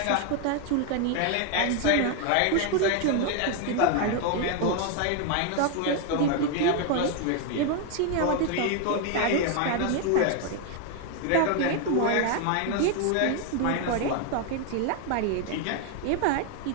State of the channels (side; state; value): both; different; correlation 0.01